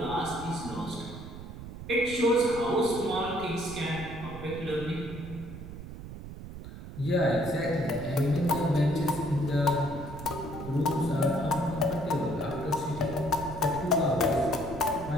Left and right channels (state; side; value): noise; right; rumble, 11 dB below the sound